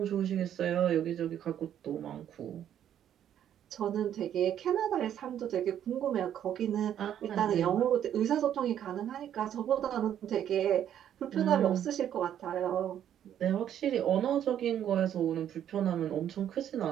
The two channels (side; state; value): left; quieter; 10.2 dB